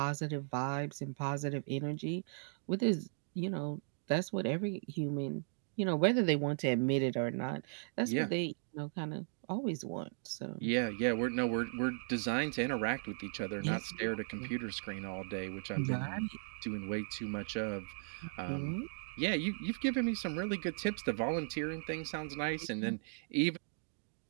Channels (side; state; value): left; silent; digital silence